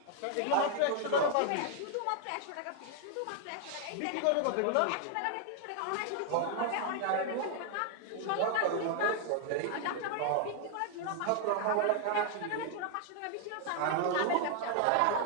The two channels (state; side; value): different; both; correlation 0.00